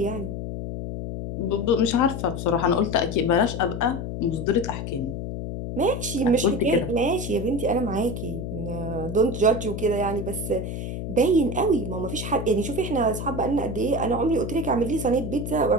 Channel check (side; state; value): left; noise; hum, 5 dB below the sound